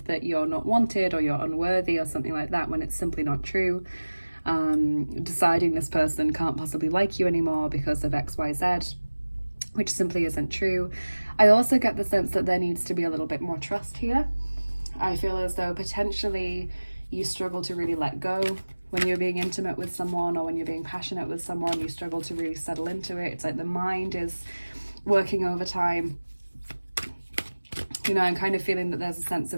that you're not wanted or you're unworthy or something like that when it's simply not true. Deciding this person can't possibly like you anymore because of XYZ, which simply isn't true. I also get the sense that there needs to be a little bit more trust here. I feel as though potentially you struggle to really let go when you're being intimate with someone, or when you're being passionate with someone, you struggle to really settle into it. It's like the mind is working overtime. You know, I'm kind of feeling that there's a sense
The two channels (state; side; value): inverted; both; correlation -1.00